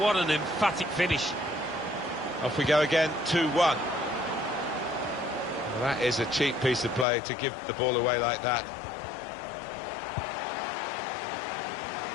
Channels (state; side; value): drops out; right; at 7.1 s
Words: an emphatic finish. Off we go again, 2-1. Well, that is a cheap piece of play to give the ball away like that.